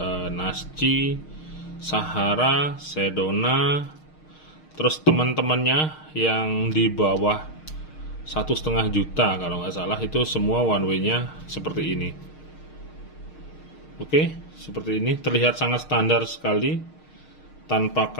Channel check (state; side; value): late; right; 6.5 ms